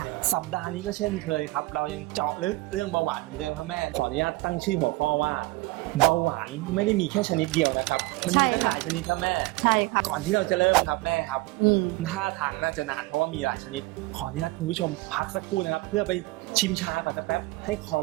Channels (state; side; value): quieter; left; 21.9 dB